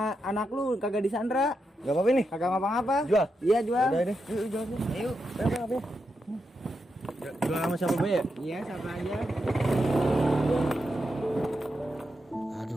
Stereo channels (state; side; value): normal; both; correlation 0.85